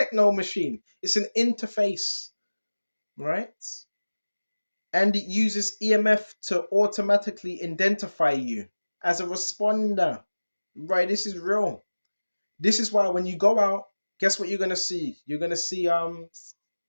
machine. It's an interface, right? And it uses EMF to automatically identify you as a responder. Right, this is real. This is why when you go out, guess what you're gonna see? You're gonna see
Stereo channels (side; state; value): both; inverted; correlation -1.00